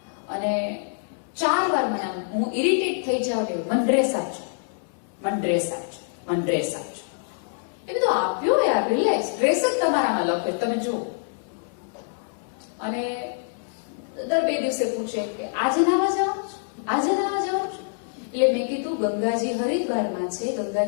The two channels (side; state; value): right; silent; 61 dB below the other